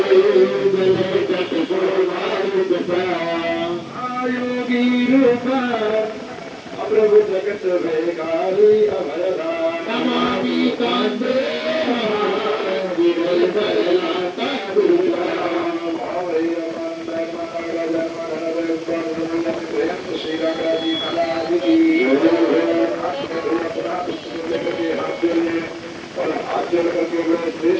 प्रभु जगत भेगारी अभयदान नमामि कांते श्री रामराजी महाराज की। और हाथ जोड़ करके बड़े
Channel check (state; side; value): identical; both; correlation 1.00